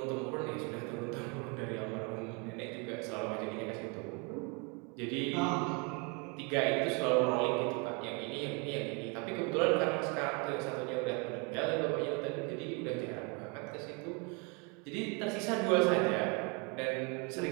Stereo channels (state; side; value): quieter; left; 32.5 dB